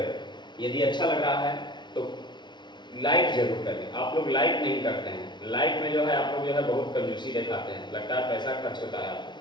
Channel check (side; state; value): right; late; 0.22 ms